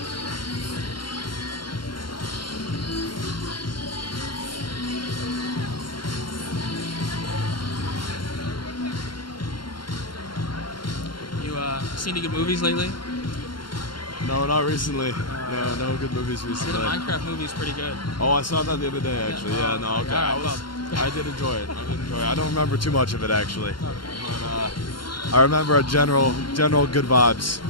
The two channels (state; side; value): late; right; 0.72 ms